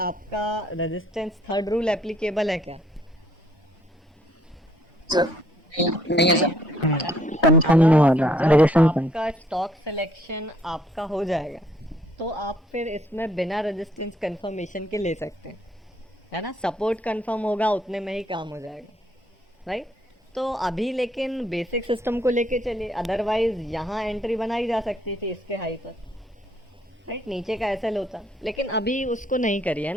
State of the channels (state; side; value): normal; both; correlation 0.66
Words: रेजिस्टेंस थर्ड रूल एप्लीकेबल है क्या? नहीं है सर कंफर्म नहीं हो रहा रेजिस्टेंस आपका स्टॉक सिलेक्शन आपका हो जाएगा तो आप फिर इसमें बिना रेजिस्टेंस कंफर्मेशन के ले सकते हैं, है ना? सपोर्ट कंफर्म होगा उतने में ही काम हो जाएगा, राइट? तो अभी लेकिन बेसिक सिस्टम को लेके चलिए, अदरवाइज यहाँ एंट्री बनाई जा सकती थी इसके हाई पर, राइट? नीचे का एसएल होता, लेकिन अभी उसको नहीं करी है